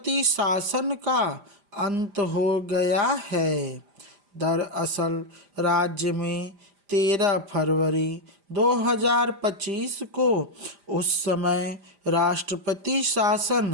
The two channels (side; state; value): left; late; 5.0 ms